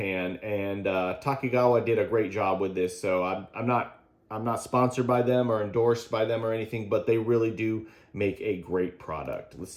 And Takigawa did a great job with this. So I'm not sponsored by them or endorsed by them or anything, but they really do make a great product. Let's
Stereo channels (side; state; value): both; identical; correlation 1.00